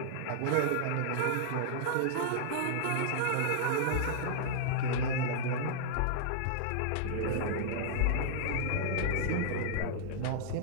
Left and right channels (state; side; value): different; both; correlation -0.01